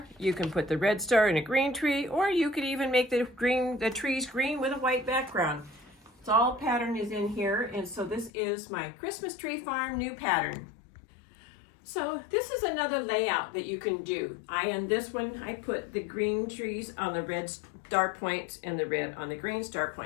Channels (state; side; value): drops out; right; at 8.3 s